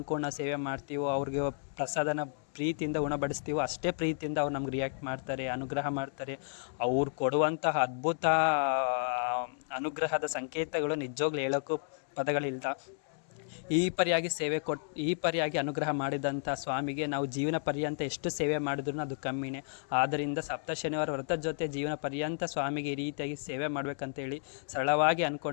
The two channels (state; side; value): silent; right; digital silence